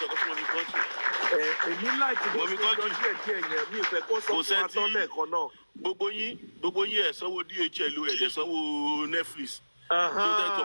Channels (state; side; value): inverted; both; correlation -1.00